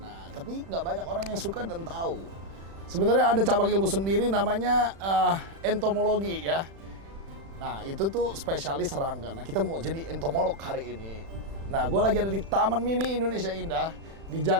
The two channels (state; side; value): late; left; 36 ms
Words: Nah, tapi nggak banyak orang yang suka dan tahu. Sebenarnya ada cabang ilmu sendiri namanya entomologi ya. Nah, itu tuh spesialis serangga. Nah, kita mau jadi entomolog hari ini. Nah, gue lagi ada di Taman Mini Indonesia Indah di